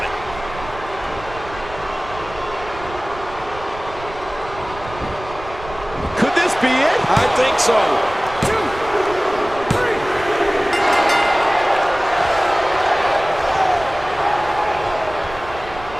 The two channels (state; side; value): noise; right; rumble, 15 dB below the sound